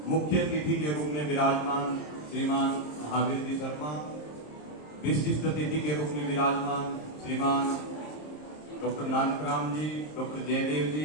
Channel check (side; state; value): right; late; 26 ms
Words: मुख्य अतिथि के रूप में विराजमान श्रीमान महावीर जी शर्मा, विशिष्ट अतिथि के रूप में विराजमान श्रीमान डॉक्टर नानकराम जी, डॉक्टर जयदेव